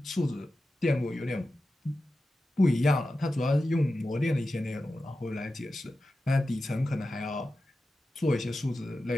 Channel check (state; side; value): normal; both; correlation 0.93